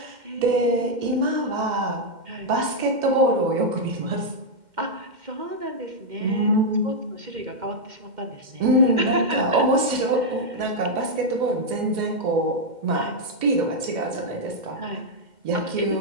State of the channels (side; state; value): left; late; 2.1 ms